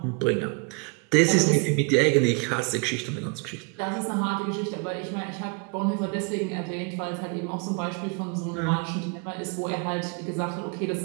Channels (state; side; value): quieter; left; 33.1 dB